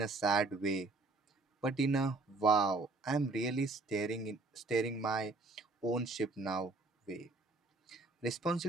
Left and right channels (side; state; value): left; quieter; 3.3 dB